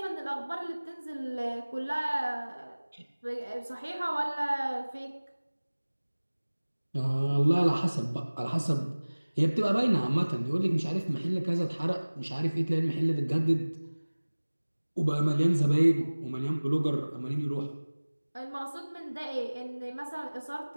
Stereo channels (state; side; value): inverted; both; correlation -1.00